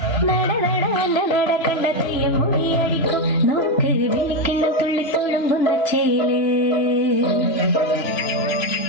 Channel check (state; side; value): late; right; 3.0 ms